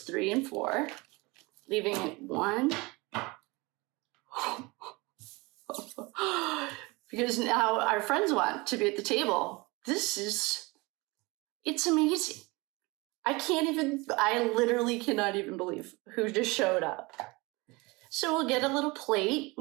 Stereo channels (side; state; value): left; quieter; 24.6 dB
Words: and 4, leaving it 1. Because now our friends want to be at the table. It's amazing. I literally cannot even believe who just showed up. So we'll get a little plate.